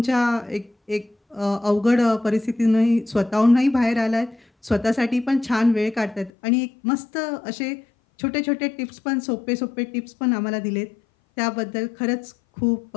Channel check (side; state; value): right; drops out; at 6.3 s